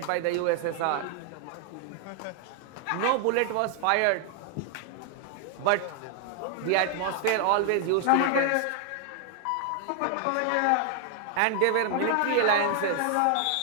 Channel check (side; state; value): both; different; correlation 0.00